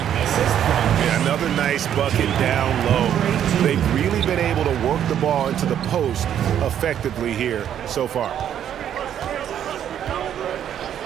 another nice bucket down low. They've really been able to work the ball into the post effectively here so far.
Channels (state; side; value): quieter; left; 9.9 dB